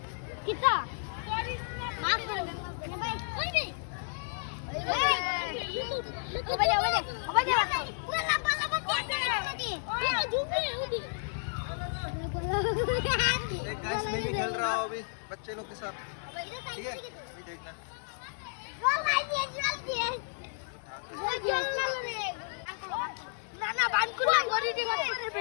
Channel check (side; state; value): right; silent; digital silence